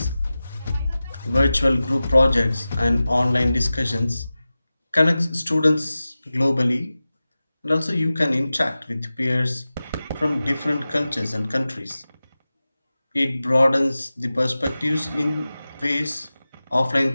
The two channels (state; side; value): inverted; both; correlation -0.96